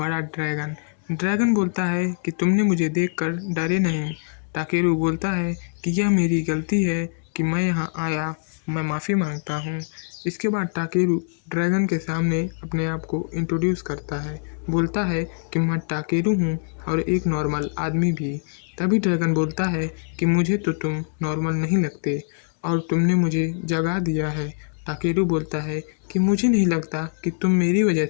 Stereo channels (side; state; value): right; silent; 63 dB below the other